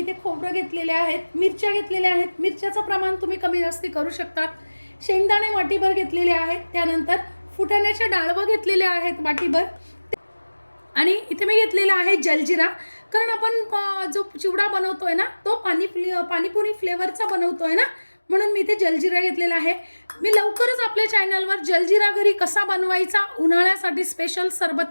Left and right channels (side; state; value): both; inverted; correlation -1.00